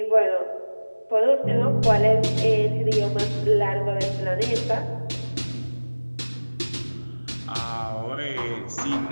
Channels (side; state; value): both; inverted; correlation -1.00